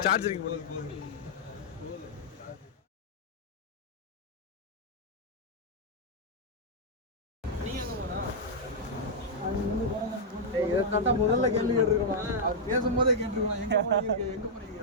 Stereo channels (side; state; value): both; normal; correlation -0.06